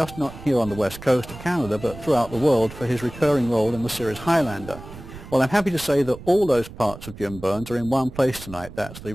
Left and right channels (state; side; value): noise; right; rumble, 15 dB below the sound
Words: not here on the west coast of Canada, but throughout the world for his recurring role in the series Highlander. Well, I'm happy to say that all those parts of Jim Byrnes are in one place tonight. That's the